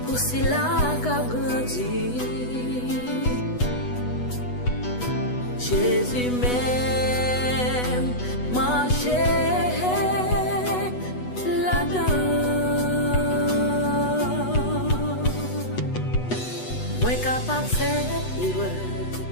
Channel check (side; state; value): right; late; 8.1 ms